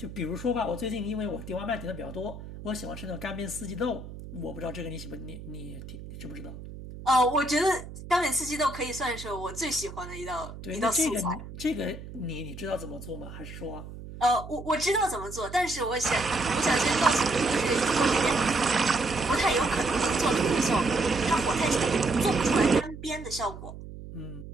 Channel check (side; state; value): right; noise; hum, 12 dB below the sound